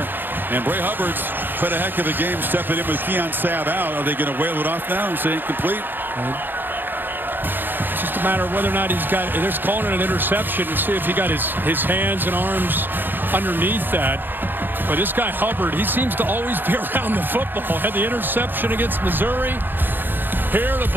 and Bray Hubbard's played a heck of a game stepping in with Keon Sabb out. Are they going to whale it off now and say incomplete? It's just a matter of whether or not he's got, they're calling it an interception, and see if he got his hands and arms underneath that. But this guy Hubbard, he seems to always be around the football. Had the interception against Missouri. Here the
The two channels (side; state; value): left; late; 0.094 ms